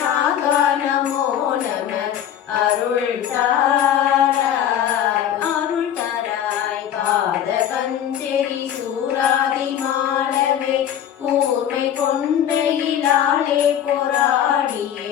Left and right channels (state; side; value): quieter; right; 10.1 dB